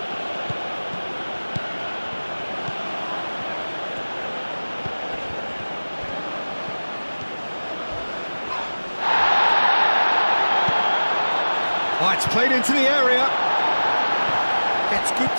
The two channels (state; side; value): inverted; both; correlation -1.00